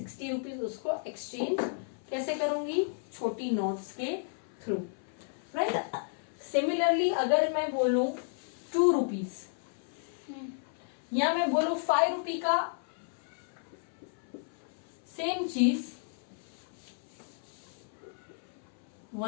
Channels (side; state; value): right; silent; 56 dB below the other